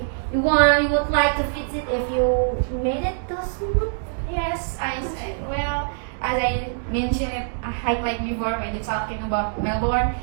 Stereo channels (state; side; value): silent; left; digital silence